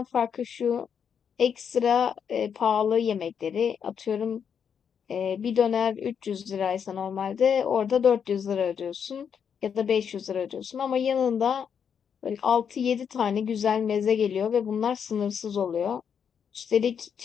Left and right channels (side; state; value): right; quieter; 7.4 dB